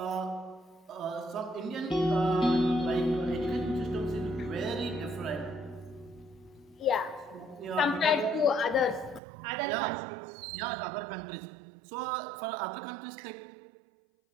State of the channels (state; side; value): drops out; left; at 9.2 s